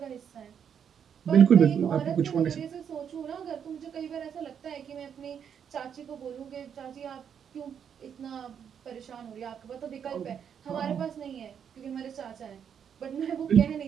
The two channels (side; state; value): left; quieter; 8.0 dB